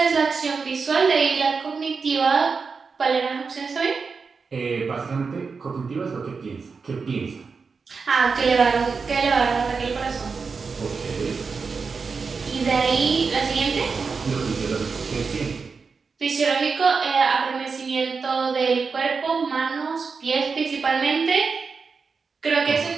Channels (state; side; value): quieter; left; 5.0 dB